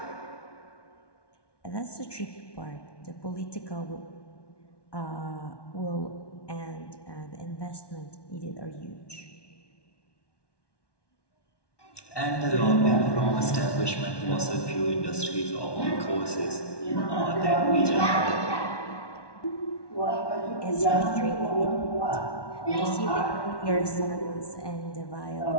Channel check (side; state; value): right; late; 1.1 ms